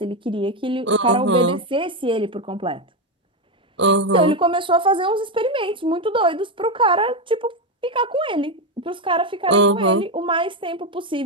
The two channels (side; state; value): both; normal; correlation 0.09